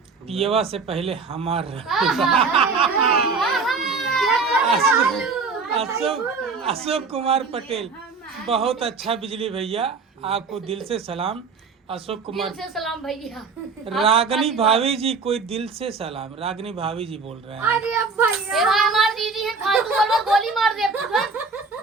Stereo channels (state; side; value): quieter; left; 4.6 dB